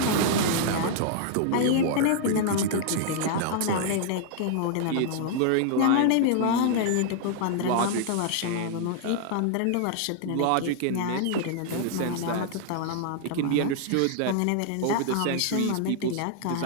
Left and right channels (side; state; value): both; different; correlation -0.01